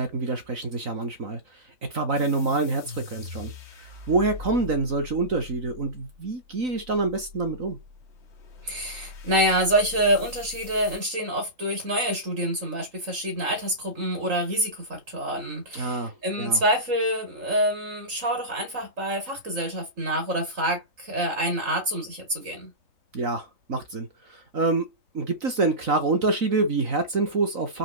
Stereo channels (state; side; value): late; left; 3.8 ms